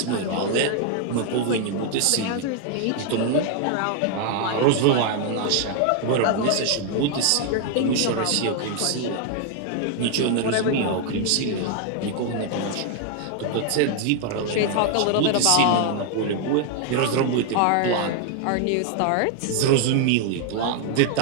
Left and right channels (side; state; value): both; different; correlation 0.00